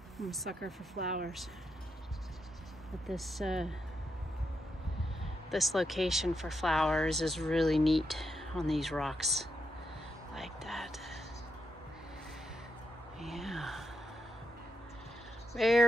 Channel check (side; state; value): both; normal; correlation 0.83